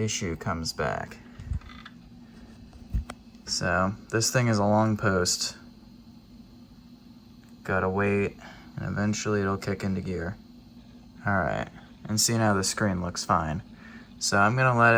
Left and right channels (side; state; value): both; identical; correlation 1.00